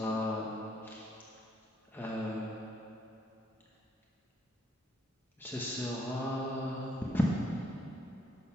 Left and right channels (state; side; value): normal; both; correlation 0.71